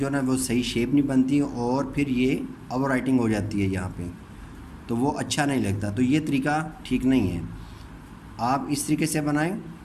ना वो सही शेप नहीं बनती और फिर ये ओवर राइटिंग हो जाती है यहाँ पे, तो वो अच्छा नहीं लगता। तो ये तरीका ठीक नहीं है। आप इस तरीके से बनाएं,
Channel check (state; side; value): identical; both; correlation 1.00